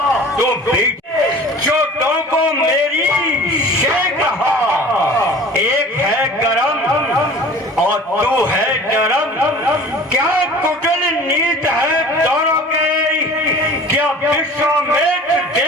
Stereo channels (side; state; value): both; normal; correlation 0.43